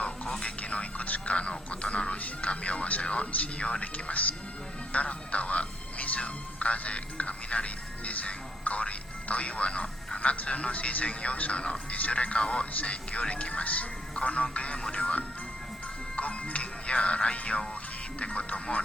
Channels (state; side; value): normal; both; correlation 0.73